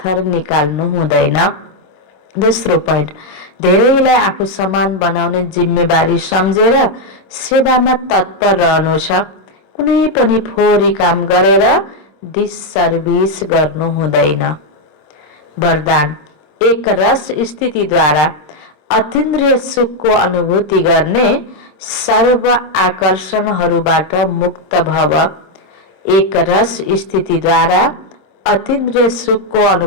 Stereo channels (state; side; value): late; right; 26 ms